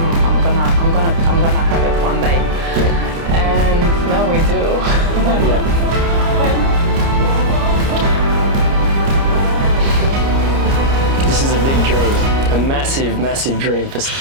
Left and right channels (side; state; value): left; late; 30 ms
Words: gonna have it one day. And now we do. This is a big dream, a massive, massive dream for.